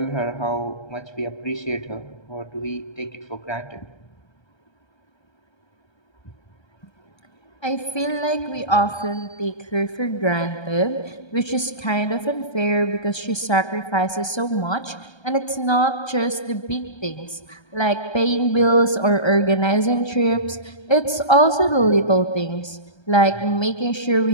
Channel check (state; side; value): late; right; 1.3 ms